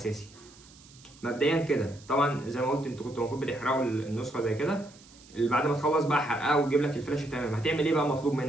مبدئيا كده طبعا زي ما قلت انتوا كنتوا المفروض بتحرقوا النسخه زي كده، اللي بعد ما تخلص بقى حرقها وتجيب لك الفلاشه تمام، هتعمل ايه بقى مطلوب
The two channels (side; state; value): right; noise; hiss, 24 dB below the sound